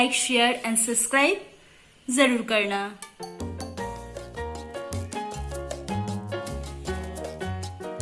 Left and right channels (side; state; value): both; identical; correlation 1.00